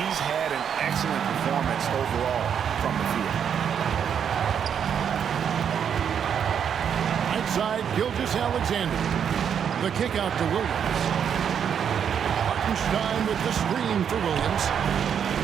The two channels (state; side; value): quieter; left; 8.0 dB